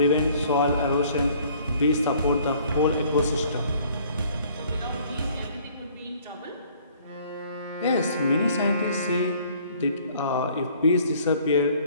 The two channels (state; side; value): inverted; both; correlation -0.57